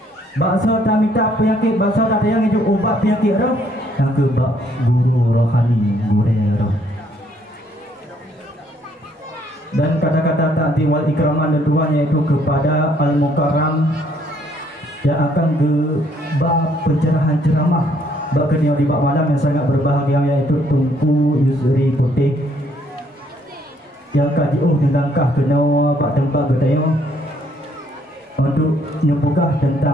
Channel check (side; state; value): both; normal; correlation 0.67